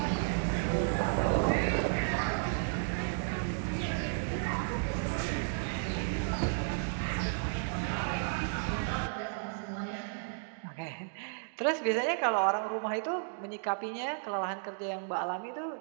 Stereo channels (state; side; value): silent; left; digital silence